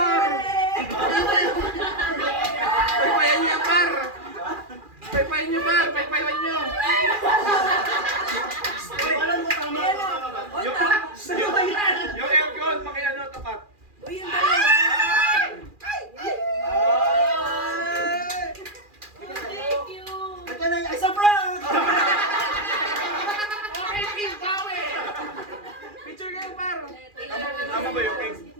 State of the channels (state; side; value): late; left; 2.4 ms